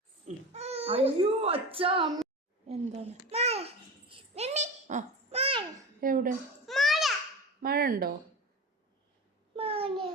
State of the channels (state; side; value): normal; both; correlation 0.29